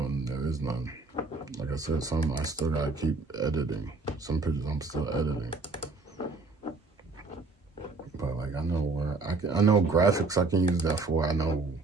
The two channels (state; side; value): quieter; left; 3.7 dB